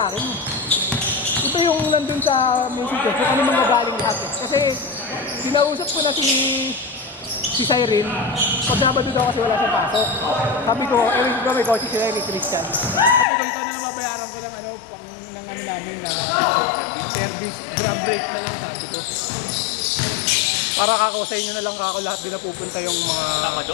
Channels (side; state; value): right; drops out; at 13.2 s